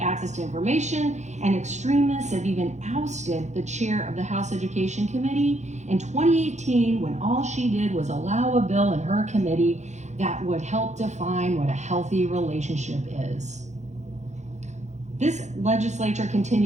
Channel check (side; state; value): left; late; 0.34 ms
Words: access to information, and extremists have even ousted the chair of the House Education Committee in 2018 when all she did was allow a bill in her committee that would help define what a healthy relationship is. This legislature